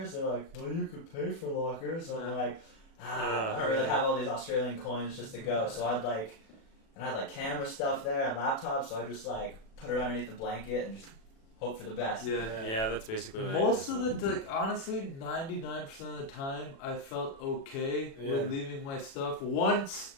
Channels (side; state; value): right; late; 36 ms